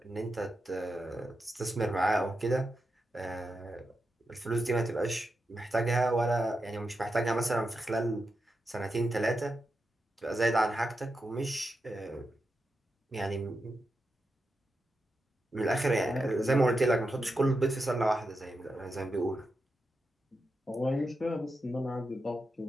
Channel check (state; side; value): normal; both; correlation 0.88